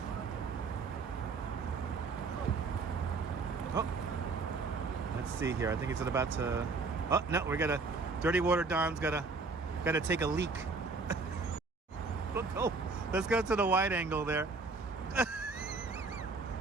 Oh, let's see here. I think it's about to. Oh no, we gotta. Dirty Water Don's gotta take a leak. Let's go to the wide angle there.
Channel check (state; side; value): quieter; left; 4.1 dB